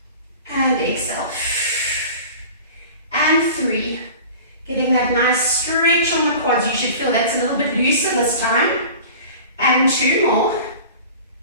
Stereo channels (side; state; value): both; inverted; correlation -0.39